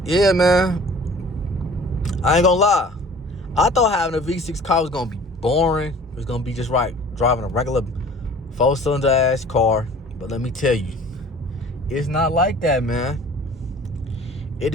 yeah, man. I ain't gonna lie. I thought having a V6 car was gonna be boring. It was gonna be just right driving a regular 4-cylinder ass car. But let me tell you, it's not like that, man.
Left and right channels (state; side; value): normal; both; correlation 0.47